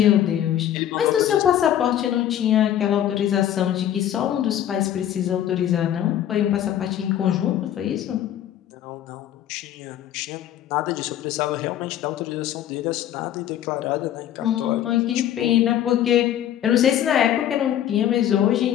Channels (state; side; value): quieter; right; 11.2 dB